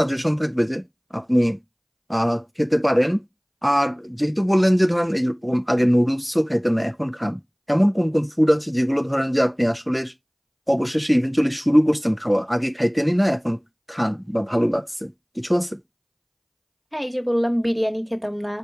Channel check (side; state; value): both; identical; correlation 1.00